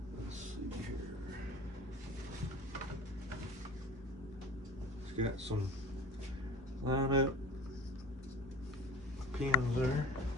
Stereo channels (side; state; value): both; normal; correlation 0.38